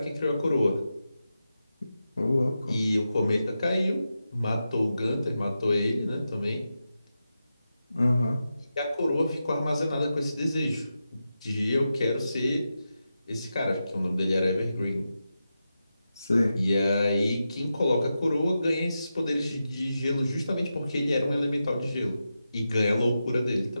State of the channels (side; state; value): both; inverted; correlation -0.90